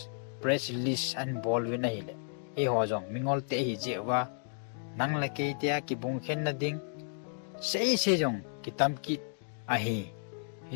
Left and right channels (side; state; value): right; silent; digital silence